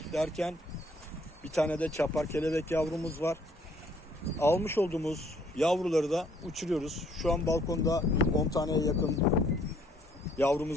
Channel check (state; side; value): normal; both; correlation 0.64